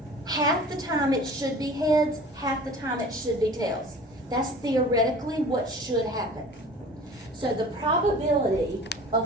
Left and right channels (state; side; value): normal; both; correlation 0.43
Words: half the time it should be heads, half the time it should be tails. That's theoretically what should happen. So the probability